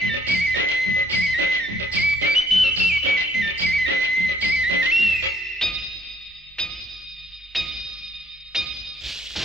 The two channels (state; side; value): normal; both; correlation 0.65